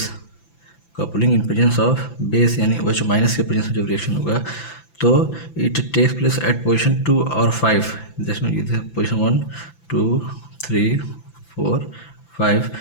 coupling in presence of base यानी OH माइनस के प्रेजेंस में जब रिएक्शन होगा तो it takes place at position 2 और 5, जिसमें पोजीशन 1 2 3 4 5,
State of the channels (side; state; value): right; late; 5.9 ms